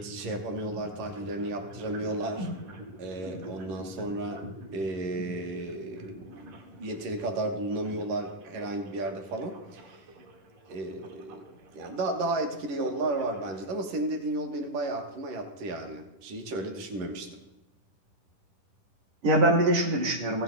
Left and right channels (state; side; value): late; left; 10 ms